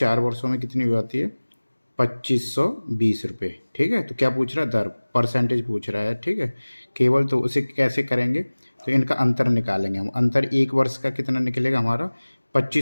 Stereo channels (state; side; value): inverted; both; correlation -1.00